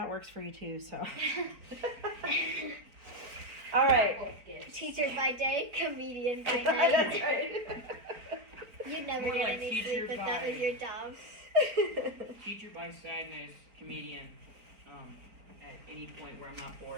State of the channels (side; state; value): left; late; 4.4 ms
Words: works for you too. So. All right. Both gifts. Teacher by day, comedian by That's night. right. You'd never More get like any teacher sleep if that by- was your job. Teacher by sadness, comedian, at any point where I'm not